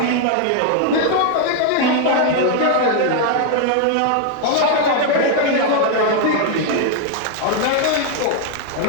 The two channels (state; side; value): different; both; correlation 0.00